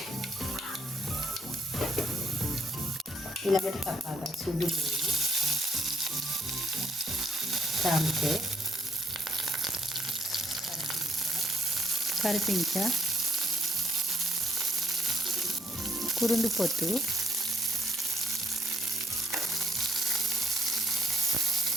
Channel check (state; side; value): normal; both; correlation 0.70